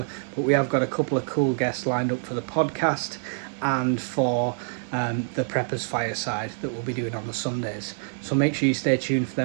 but we have got a couple of cool guests lined up for the podcast and for the Preppers Fireside that we'll be doing on the Sundays. So make sure you stay tuned for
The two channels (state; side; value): silent; left; digital silence